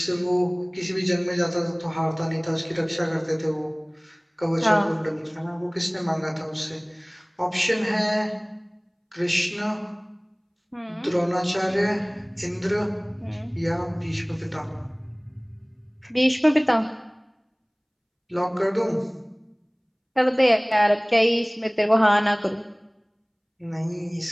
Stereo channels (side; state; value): both; identical; correlation 1.00